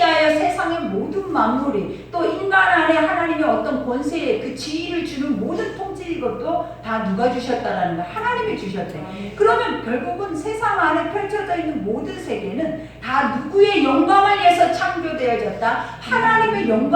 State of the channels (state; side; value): identical; both; correlation 1.00